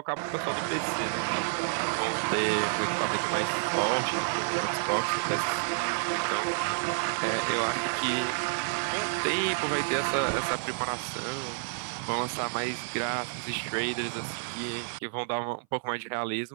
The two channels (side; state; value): left; silent; 58 dB below the other